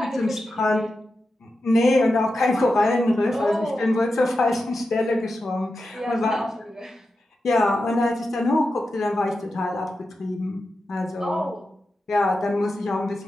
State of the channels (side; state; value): both; normal; correlation 0.90